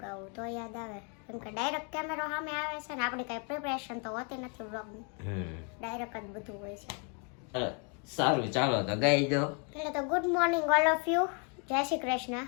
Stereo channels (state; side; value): quieter; right; 38.1 dB